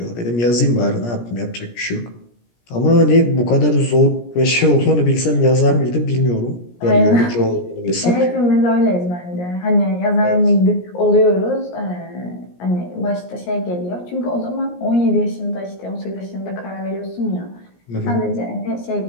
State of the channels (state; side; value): late; right; 17 ms